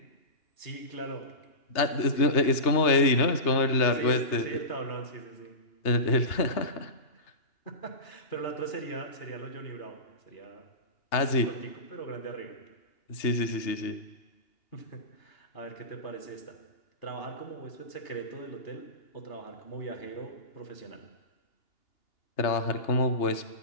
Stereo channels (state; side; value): late; right; 2.8 ms